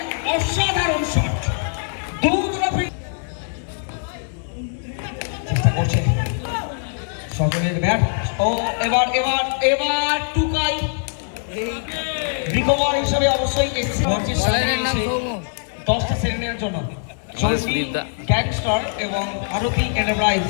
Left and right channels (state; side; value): silent; right; digital silence